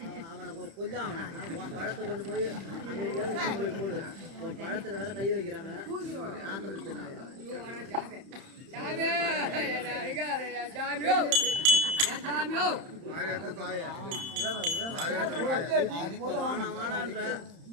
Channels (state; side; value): late; left; 31 ms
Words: அவனை கொஞ்சம் அவனை பழத்தை கொண்டு போய் அங்கே போடு, பழத்துல வேற கை வைக்கிறாங்க.